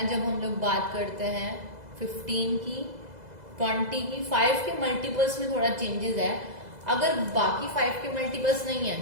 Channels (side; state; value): left; late; 2.0 ms